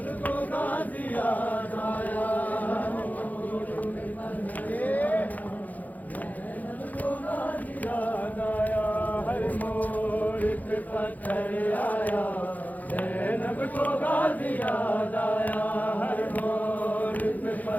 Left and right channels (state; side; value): late; right; 0.080 ms